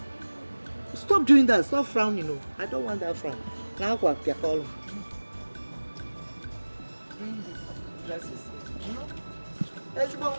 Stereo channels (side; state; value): both; inverted; correlation -1.00